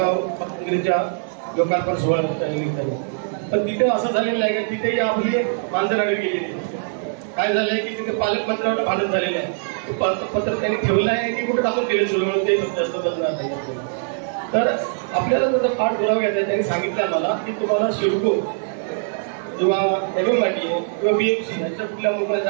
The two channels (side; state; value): left; silent; digital silence